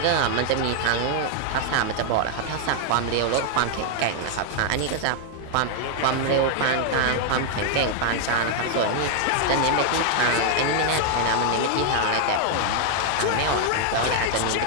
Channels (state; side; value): different; both; correlation 0.00